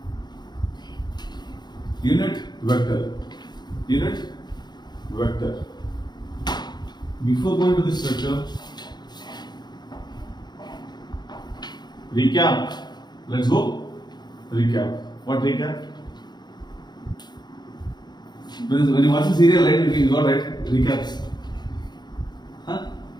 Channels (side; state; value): right; late; 0.21 ms